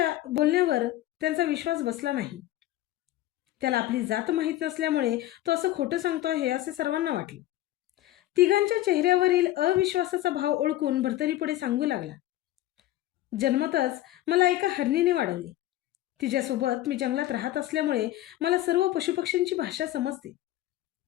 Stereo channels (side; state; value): right; quieter; 14.7 dB